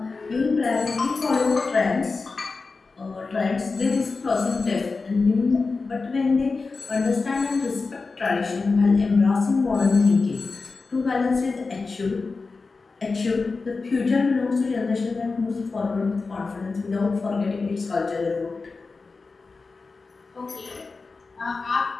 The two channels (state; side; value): quieter; right; 4.1 dB